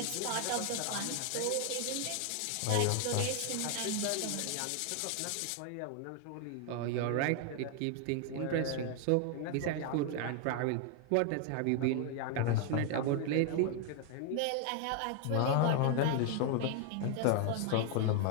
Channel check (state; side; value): different; both; correlation 0.00